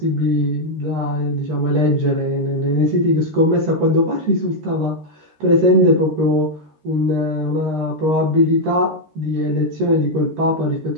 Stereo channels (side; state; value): left; late; 13 ms